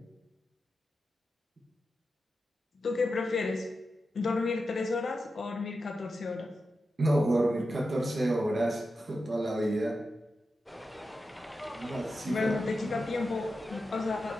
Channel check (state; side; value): normal; both; correlation 0.90